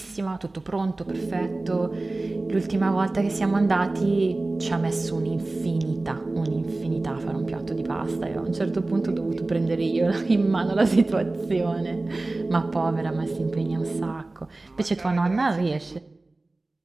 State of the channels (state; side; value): quieter; left; 3.0 dB